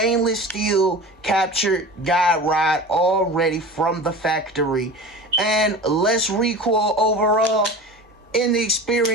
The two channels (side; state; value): both; normal; correlation 0.34